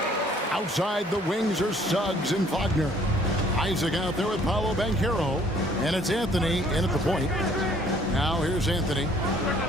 Outside the wings are Suggs and Wagner. Isaac out there with Paolo Banchero. And it's Anthony in at the point. Now here's Anthony.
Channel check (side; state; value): both; normal; correlation 0.59